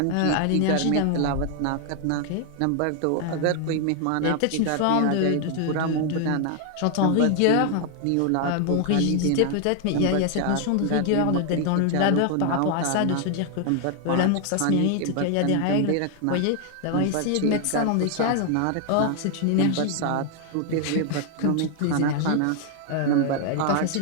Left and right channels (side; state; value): both; different; correlation 0.00